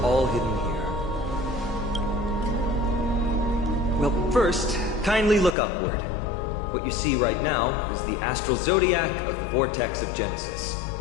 all hidden here. Well, first, kindly look upward. What you see right now is the astral zodiac of the Vortex of Genesis.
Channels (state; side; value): drops out; right; at 5.6 s